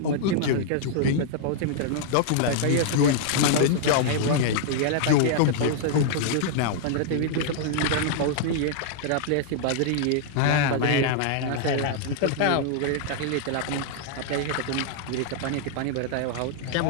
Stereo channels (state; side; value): different; both; correlation -0.01